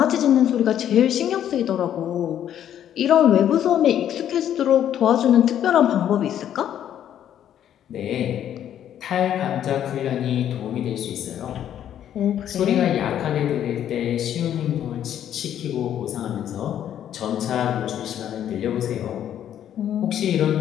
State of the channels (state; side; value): quieter; right; 10.4 dB